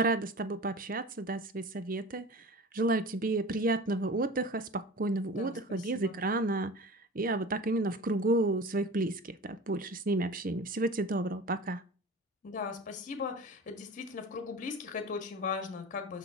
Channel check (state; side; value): normal; both; correlation 0.35